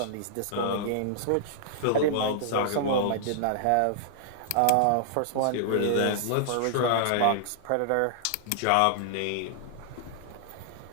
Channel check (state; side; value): different; both; correlation -0.01